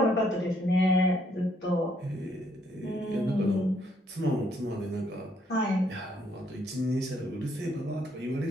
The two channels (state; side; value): normal; both; correlation 0.70